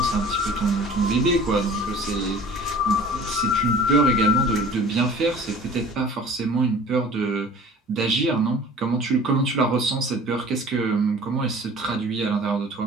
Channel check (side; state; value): both; normal; correlation 0.45